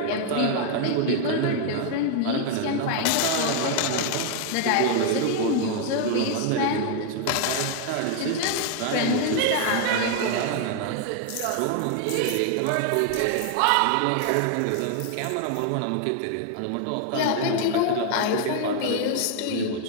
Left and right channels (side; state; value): both; different; correlation 0.00